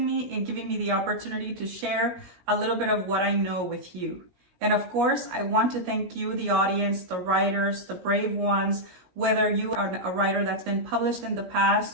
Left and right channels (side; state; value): left; late; 16 ms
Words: me and giving me the opportunity to share a little bit of what I know with you. And of course, I want to thank you, the audience, the writers, the brave ones, whether you are a writer that's been published in the